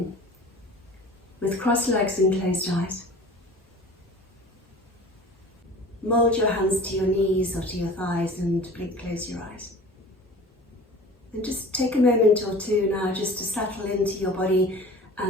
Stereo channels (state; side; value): normal; both; correlation 0.41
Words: with crossed legs and closed eyes. Mould your hands to your knees or to your thighs and close your eyes. And just take a moment or two now just to settle into your body